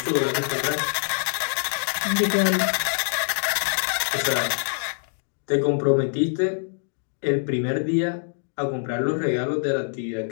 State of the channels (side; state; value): right; silent; digital silence